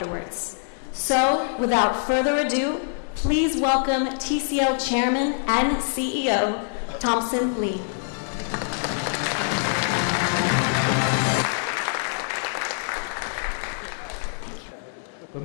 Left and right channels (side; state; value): right; silent; 62 dB below the other